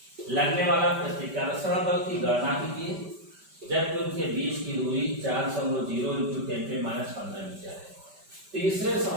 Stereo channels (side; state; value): left; late; 5.1 ms